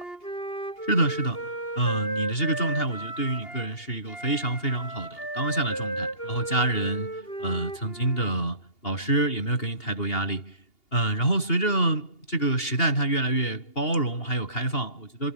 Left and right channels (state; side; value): late; right; 2.8 ms